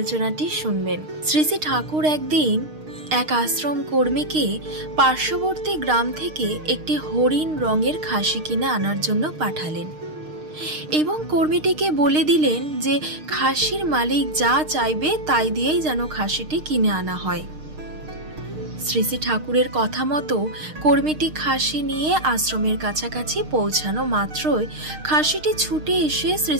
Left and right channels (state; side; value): late; left; 6.5 ms